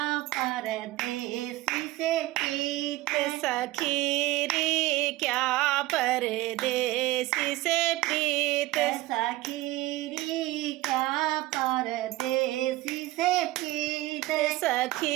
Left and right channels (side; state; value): left; quieter; 18.2 dB